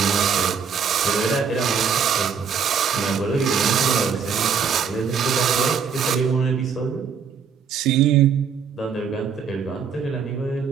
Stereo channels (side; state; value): left; quieter; 6.6 dB